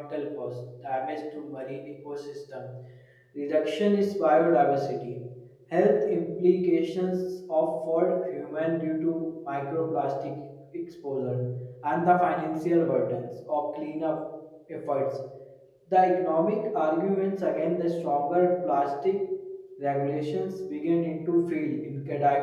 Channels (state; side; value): identical; both; correlation 1.00